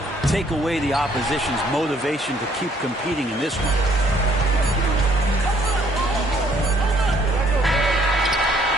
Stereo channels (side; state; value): both; normal; correlation 0.64